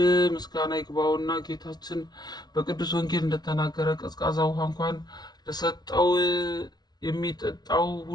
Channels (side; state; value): right; late; 0.19 ms